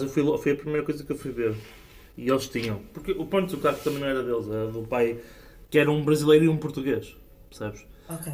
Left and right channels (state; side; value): identical; both; correlation 1.00